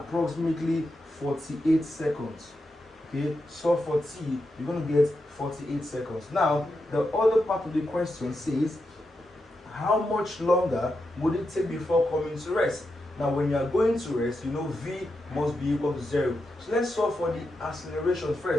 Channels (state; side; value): normal; both; correlation 0.86